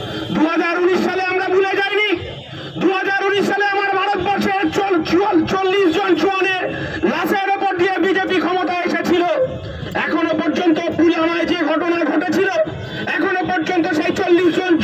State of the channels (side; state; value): both; identical; correlation 1.00